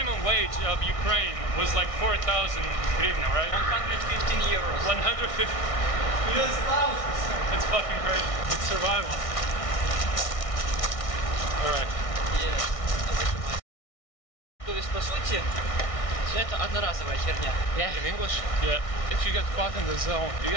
wage of Ukraine was like 4,000 hryvnia, right? 115 euros. 150. It's fucking crazy. It's survival. Alright. То есть, по сути, Все это одноразовая херня. Yeah. In English? Yeah. If you get caught in the zone, you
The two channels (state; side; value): late; right; 1.6 ms